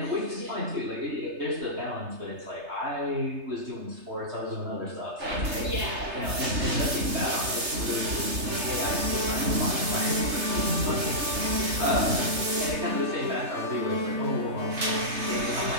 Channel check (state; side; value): late; left; 3.3 ms